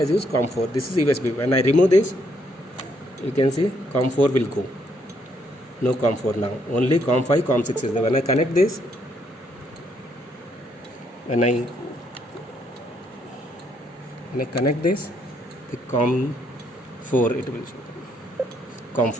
used COM4. This is USB. When I remove this, you can see COM4 will go. No COM4 now. Only COM5, COM6 is there. When I connect this, when I connect this, the COM4 it will show.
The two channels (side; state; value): both; normal; correlation 0.72